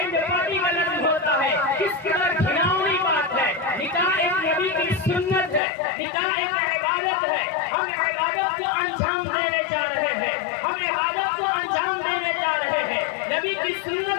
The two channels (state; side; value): drops out; right; at 5.6 s